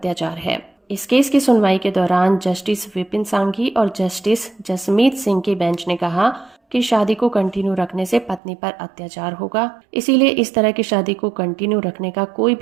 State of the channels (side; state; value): left; drops out; at 8.4 s